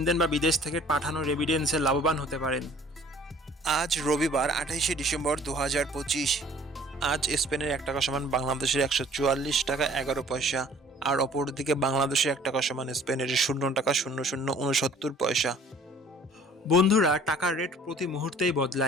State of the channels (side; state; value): both; normal; correlation 0.53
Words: বা বিদেশ থেকে পাঠানো রেমিটেন্সে লাভবান হতে পারেন। আজ রবিবার 28শে ডিসেম্বর 2025। আজ স্পেনের 1 টাকা সমান বাংলাদেশের 144 টাকা 11 পয়সা, আর অপরদিকে বাংলাদেশের 1 টাকা সমান স্পেনের 0 টাকা 0069 পয়সা। বন্ধুরা, টাকার রেট প্রতি মুহূর্তেই